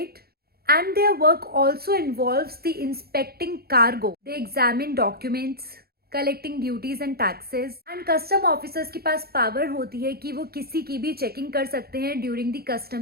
And their work also involves the inspecting cargo. They examine documents, collecting duties and taxes. And custom officers के पास power होती है कि वो किसी की भी checking कर सकते हैं during the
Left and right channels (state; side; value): late; left; 0.45 ms